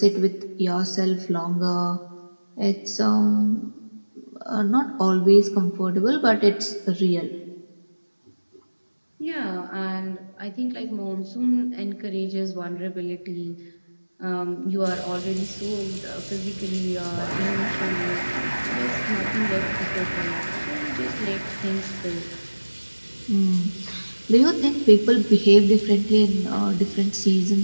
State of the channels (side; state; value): both; inverted; correlation -1.00